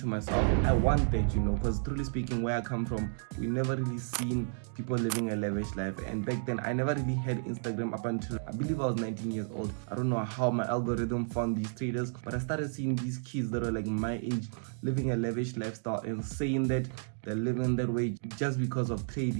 myself, I want that, because truly speaking, where I come from, we never really seen people living a lavish life. And back then, I never really had Instagram up until I believe I was 19 years old. I don't know how my algorithm found these traders, but I started seeing these kids that were like my age living a lavish lifestyle and saying that they're living that way just because of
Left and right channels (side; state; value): left; silent; digital silence